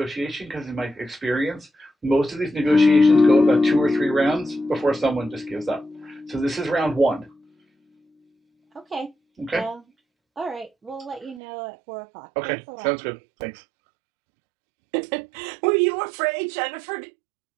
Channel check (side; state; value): left; drops out; at 11.4 s